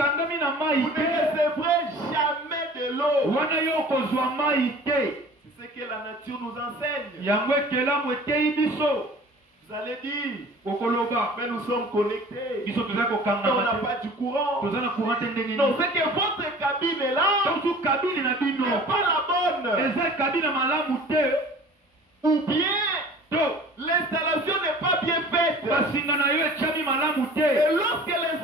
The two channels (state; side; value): normal; both; correlation 0.45